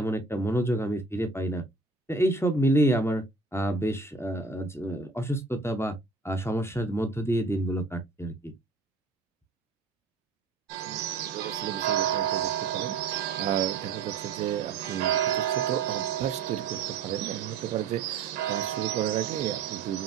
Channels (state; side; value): quieter; left; 4.0 dB